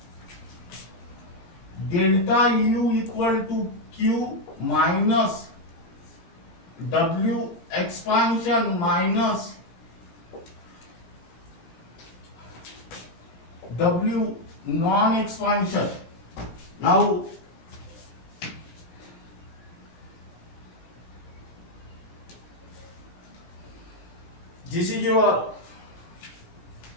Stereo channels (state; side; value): late; right; 18 ms